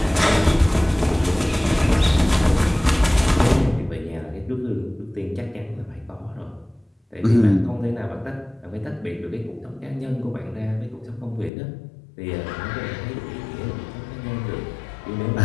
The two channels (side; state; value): right; drops out; at 11.5 s